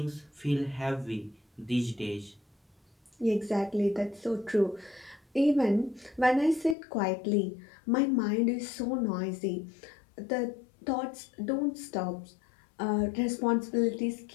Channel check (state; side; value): drops out; right; at 6.8 s